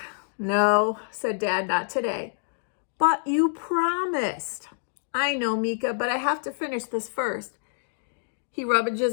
No, said Dad, not today. But you promised. I know, Mika, but I have to finish this first. He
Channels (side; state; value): right; silent; digital silence